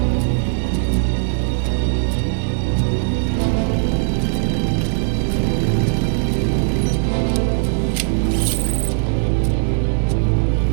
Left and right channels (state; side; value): silent; left; digital silence